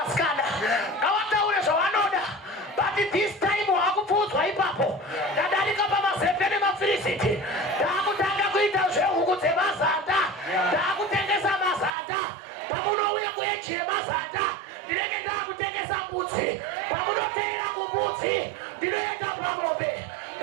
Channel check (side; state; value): left; drops out; at 11.9 s